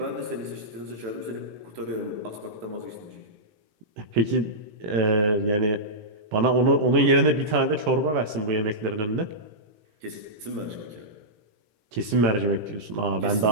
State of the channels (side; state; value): left; late; 18 ms